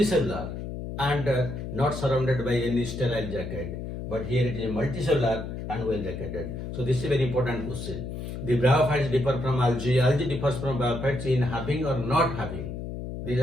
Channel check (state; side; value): noise; left; hum, 7 dB below the sound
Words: and not surrounded by any sterile jacket. But here it is multicellular and well jacketed. So this is a very important question. The bryophytes differ from algae. Algae differs from bryophytes in having or not having. These